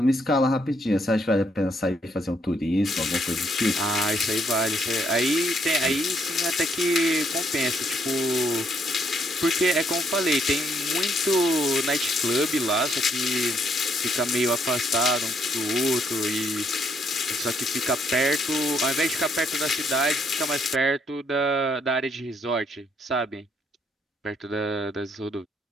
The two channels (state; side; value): normal; both; correlation 0.71